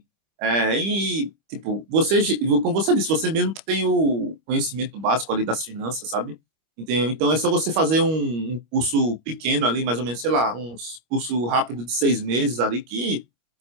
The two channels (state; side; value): late; left; 25 ms